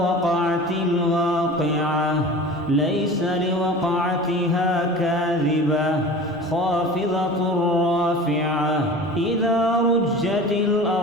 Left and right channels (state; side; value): normal; both; correlation 0.38